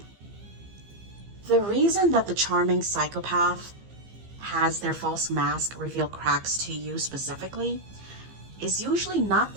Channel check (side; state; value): left; late; 15 ms